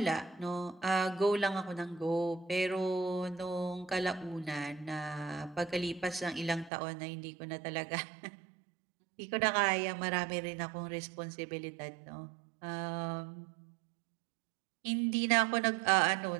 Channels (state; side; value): drops out; left; at 6.7 s